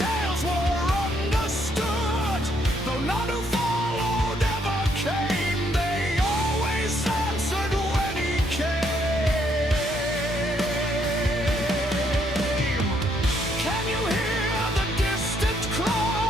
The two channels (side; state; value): both; normal; correlation 0.72